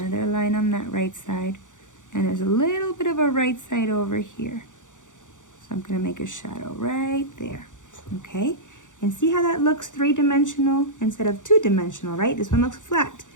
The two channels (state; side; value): late; right; 0.86 ms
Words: line on that right side, and there's a little bit of a right side over here. So I'm going to make a shadow right there. Okay? And see how that looks three-dimensional instead of two-dimensional, right? This one looks flat,